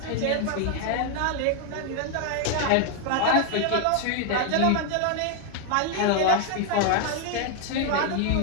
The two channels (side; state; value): both; different; correlation 0.00